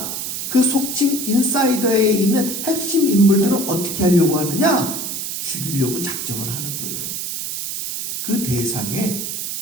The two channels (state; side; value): noise; right; hiss, 4 dB below the sound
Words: 그 속칭 인사이더에 있는 핵심 인물들을 어떻게 하려고 하느냐? 죽이려고 작정을 하는 거예요. 그 대상에